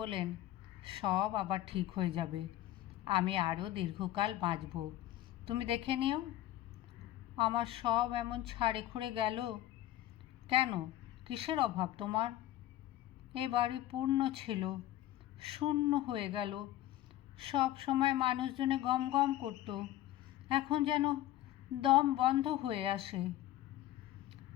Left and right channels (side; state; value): right; quieter; 14.2 dB